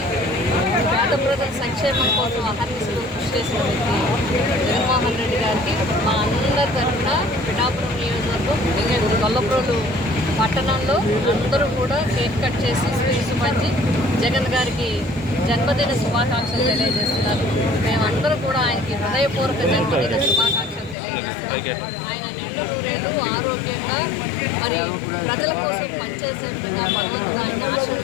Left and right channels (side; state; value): right; drops out; at 21.0 s